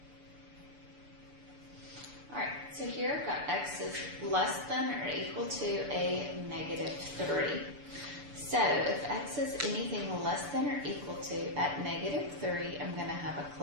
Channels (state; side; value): late; left; 6.9 ms